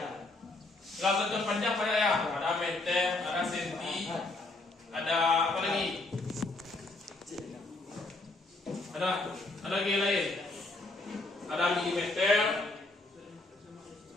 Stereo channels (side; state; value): right; quieter; 3.0 dB